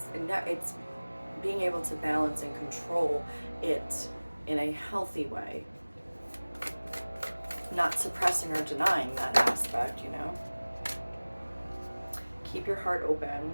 It's being able to balance and control it in a healthy way. Not suppressing or denying that aspect, Keep your heart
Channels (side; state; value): both; inverted; correlation -1.00